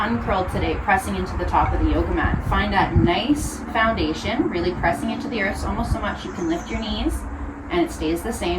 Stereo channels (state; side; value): identical; both; correlation 1.00